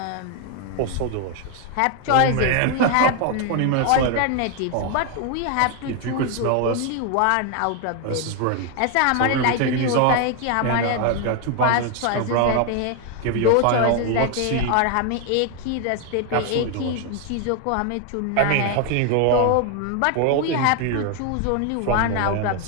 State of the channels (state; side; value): different; both; correlation 0.01